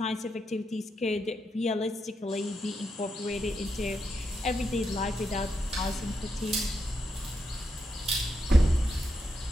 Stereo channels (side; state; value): both; normal; correlation 0.83